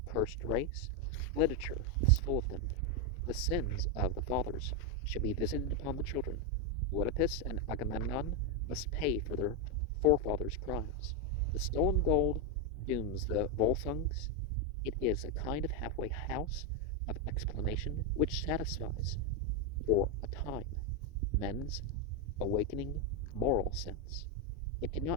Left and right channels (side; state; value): both; normal; correlation 0.04